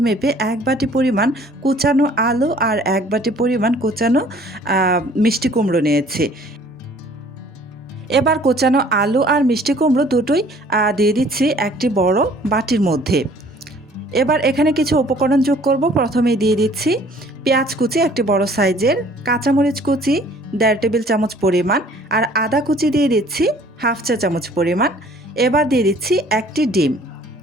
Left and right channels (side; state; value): both; normal; correlation 0.55